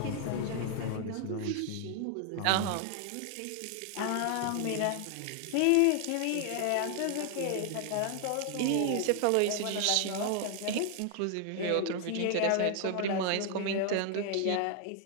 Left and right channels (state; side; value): different; both; correlation 0.00